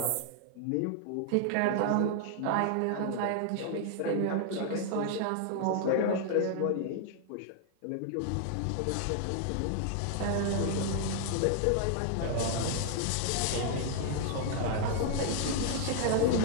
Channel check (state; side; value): different; both; correlation -0.01